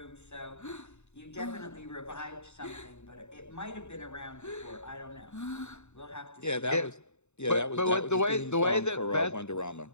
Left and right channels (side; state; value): right; late; 0.82 ms